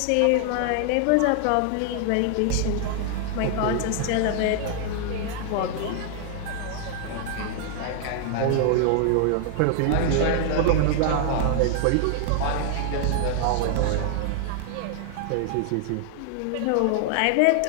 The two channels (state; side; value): different; both; correlation -0.01